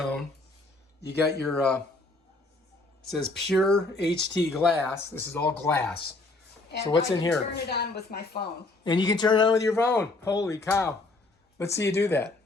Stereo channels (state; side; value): quieter; right; 3.2 dB